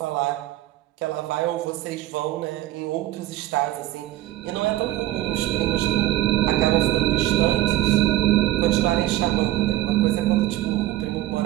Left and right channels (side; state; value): left; quieter; 15.4 dB